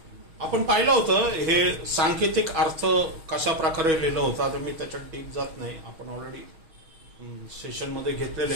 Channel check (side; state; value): left; late; 6.5 ms